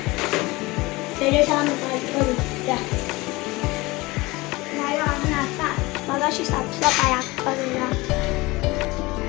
त्याचे सामान करू द्या. नाही आम्ही आता मगाशी साफसफाई करूया.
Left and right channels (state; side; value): quieter; right; 22.1 dB